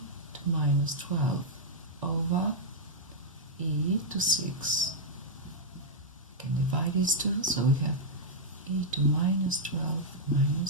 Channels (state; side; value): normal; both; correlation -0.06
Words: to minus 12 over e to 6. We can divide these two, so we have e to minus 12